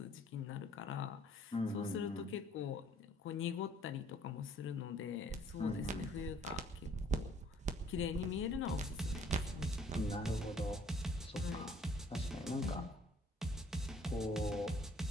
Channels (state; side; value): normal; both; correlation 0.60